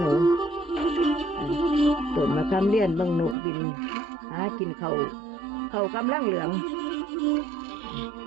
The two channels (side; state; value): left; drops out; at 3.4 s